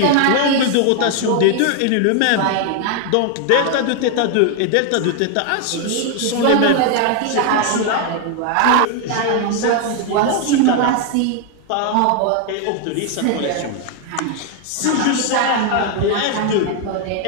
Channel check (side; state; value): both; different; correlation 0.00